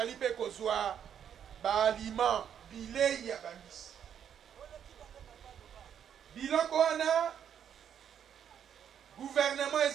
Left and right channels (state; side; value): quieter; left; 8.8 dB